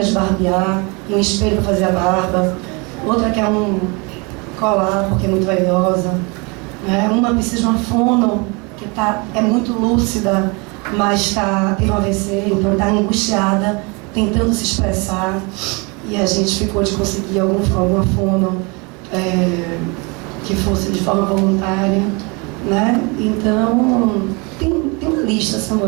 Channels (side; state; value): left; quieter; 29.5 dB